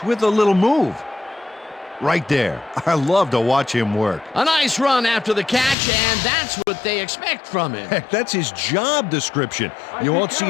with a little move. Right there. I love to watch him work. A nice run after the catch, and that's what they expect from him. Heck, that's his job description. You won't see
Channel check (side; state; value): right; drops out; at 5.8 s